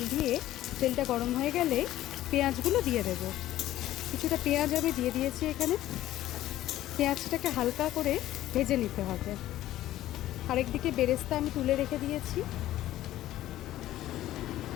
দিয়ে, তেলটা গরম হয়ে গেলে পেঁয়াজগুলো দিয়ে দেব। কিছুটা পেঁয়াজ আমি দিয়ে দিয়েছি এখানে। পেঁয়াজটাকে হালকা করে ভেজে নিতে হবে। আরেকদিকে বেরেস্তা আমি তুলে রেখে দিয়েছি।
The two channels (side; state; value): right; quieter; 14.3 dB